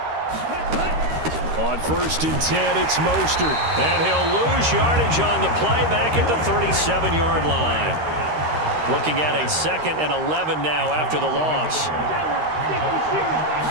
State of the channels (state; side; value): late; left; 13 ms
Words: On 1st and 10, it's Mostert. And he'll lose yardage on the play back at the 37-yard line. Looking at a 2nd and 11 now after the loss.